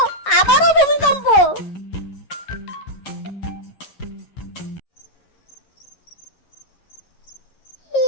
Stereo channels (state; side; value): late; right; 11 ms